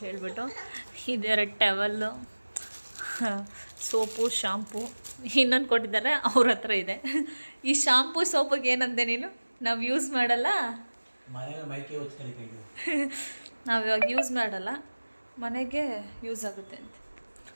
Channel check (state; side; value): inverted; both; correlation -1.00